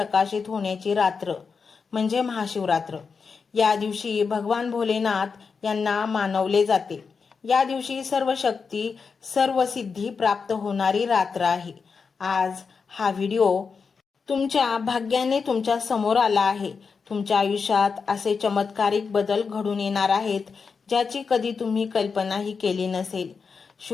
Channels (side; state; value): right; quieter; 5.3 dB